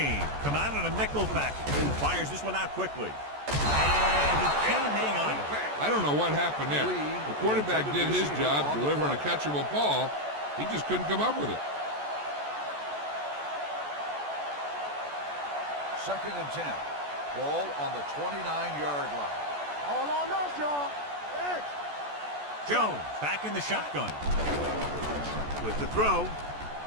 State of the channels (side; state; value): left; late; 14 ms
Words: come out in a nickel package and fires this one out quickly. And he can't hang on. I don't know what happened there. The quarterback did his job delivering a catchable ball. He just couldn't come up with it. Second and 10. Ball on the 29-yard line. All on us, y'all. X. Jones back in the shotgun. With the throw.